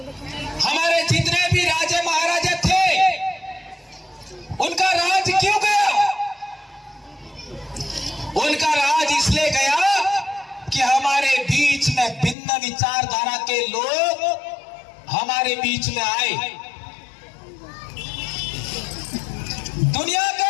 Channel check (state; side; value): drops out; right; at 12.4 s